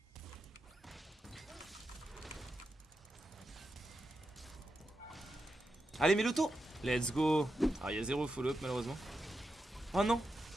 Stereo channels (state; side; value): normal; both; correlation 0.87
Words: Allez mets l'auto. Let's go. Ah il y a 0 follow-up malheureusement. Oh non.